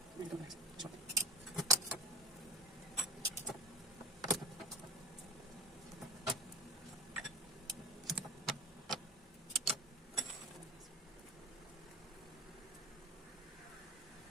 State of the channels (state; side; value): normal; both; correlation 0.31